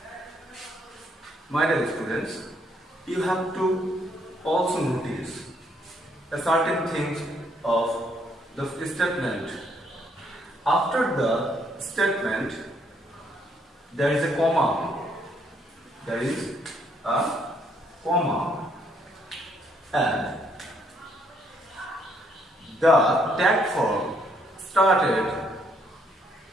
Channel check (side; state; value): both; normal; correlation 0.70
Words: My dear students, you have to also notice a certain thing of the statement. After the statement, there is a comma. There is a comma, and the tag form started